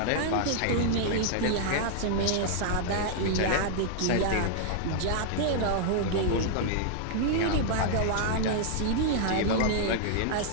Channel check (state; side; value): different; both; correlation -0.01